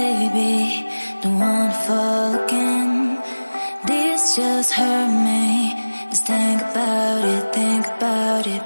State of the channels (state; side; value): inverted; both; correlation -1.00